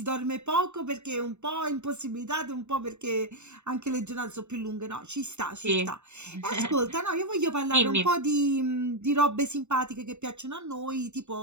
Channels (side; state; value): left; late; 0.82 ms